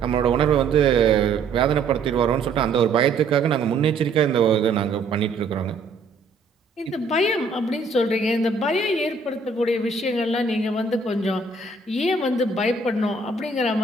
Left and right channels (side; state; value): left; quieter; 3.9 dB